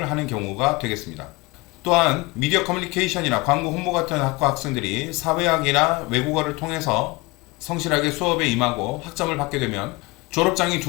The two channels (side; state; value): right; quieter; 24.2 dB